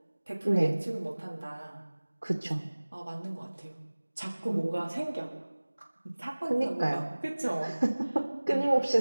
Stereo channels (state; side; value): inverted; both; correlation -1.00